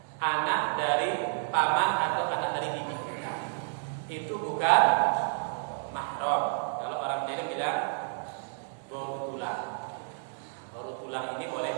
anak dari paman atau anak dari bibi kita. Itu bukan mahram. Kalau orang Jawa bilang baru tulang. Baru tulang ini boleh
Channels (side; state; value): left; silent; digital silence